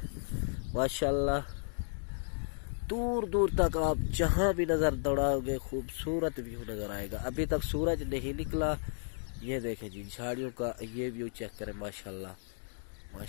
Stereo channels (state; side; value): silent; right; digital silence